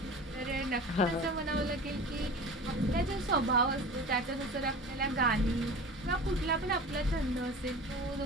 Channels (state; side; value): normal; both; correlation 0.36